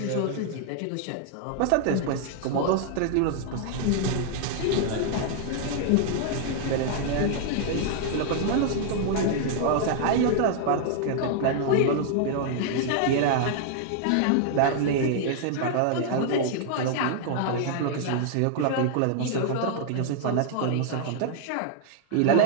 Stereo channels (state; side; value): different; both; correlation -0.01